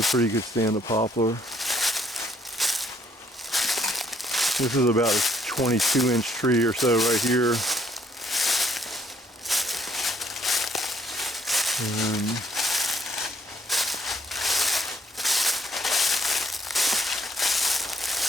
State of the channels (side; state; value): both; normal; correlation 0.67